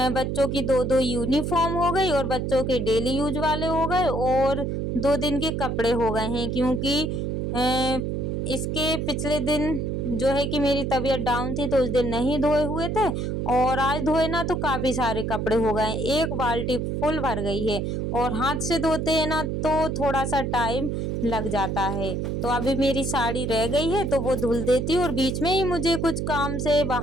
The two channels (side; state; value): right; noise; hum, 1 dB below the sound